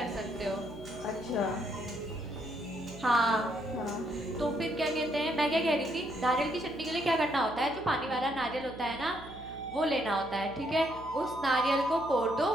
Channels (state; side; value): noise; right; hum, 16 dB below the sound